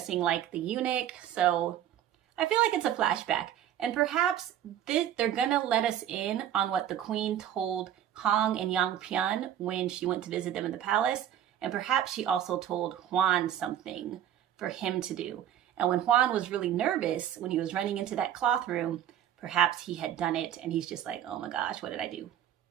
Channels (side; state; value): left; quieter; 10.8 dB